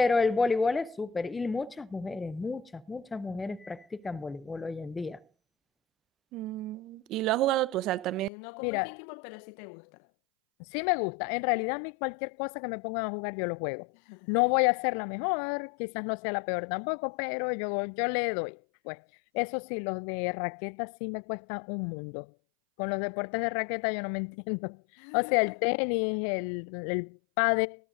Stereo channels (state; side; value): drops out; right; at 8.3 s